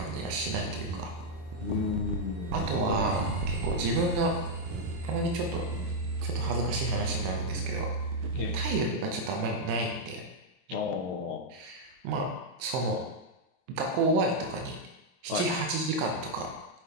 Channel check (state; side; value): late; left; 23 ms